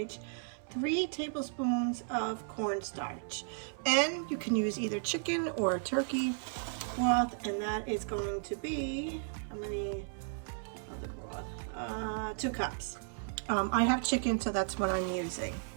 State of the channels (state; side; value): silent; left; 55 dB below the other